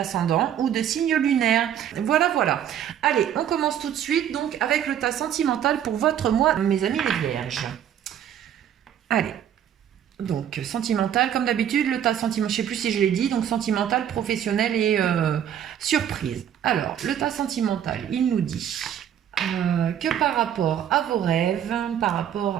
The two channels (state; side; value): quieter; left; 9.8 dB